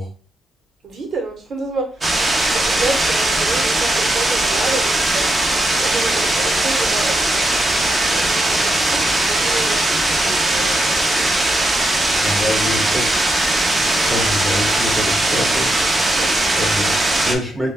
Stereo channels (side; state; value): both; normal; correlation 0.83